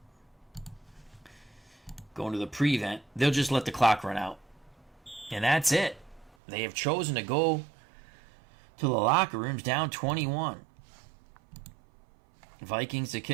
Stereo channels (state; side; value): drops out; left; at 6.4 s